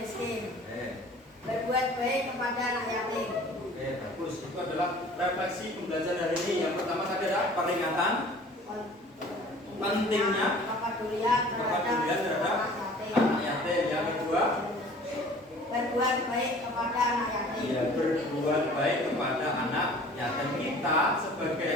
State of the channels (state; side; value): normal; both; correlation 0.48